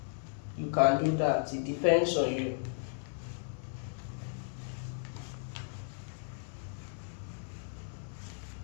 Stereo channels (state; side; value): silent; right; digital silence